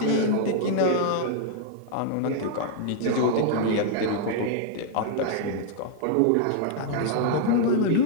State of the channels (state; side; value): different; both; correlation -0.01